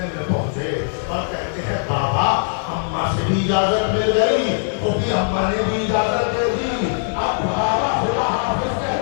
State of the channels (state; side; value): silent; right; 65 dB below the other